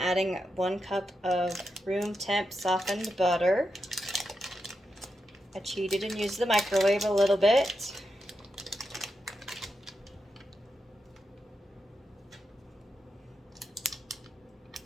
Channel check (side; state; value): both; normal; correlation 0.87